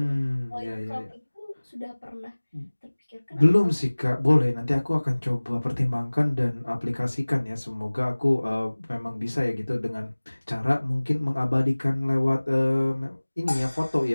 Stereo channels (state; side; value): inverted; both; correlation -1.00